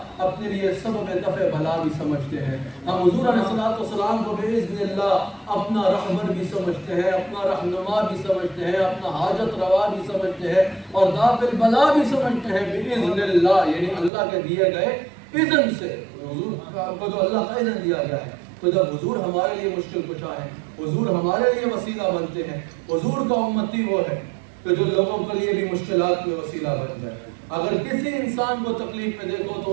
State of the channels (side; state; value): left; drops out; at 14.1 s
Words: اپنے لیے سبب دفع بلا بھی سمجھتے ہیں، ہم حضور علیہ السلام کو بإذن اللہ اپنا رہبر بھی سمجھتے ہیں، اپنا رہنما بھی سمجھتے ہیں، اپنا حاجت روا بھی سمجھتے ہیں، اور دافع البلا بھی سمجھتے ہیں بإذن اللہ، یعنی اللہ کے دیے گئے اذن سے، حضور کو جو اللہ کا اذن دیا گیا ہے۔ تو جب حضور ہمارے لیے مشکل کشا ہے، حضور ہمارے لیے وسیلہ بنتے ہیں، حضور کا امتی وہ ہے کہ جو لوگوں کے لیے بھی مشکلات میں وسیلہ بن جائے، اگر کسی انسان کو تکلیف میں دیکھو